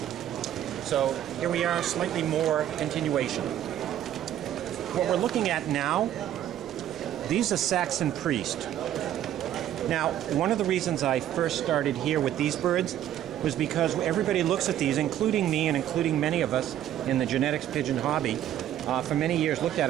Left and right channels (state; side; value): quieter; left; 11.6 dB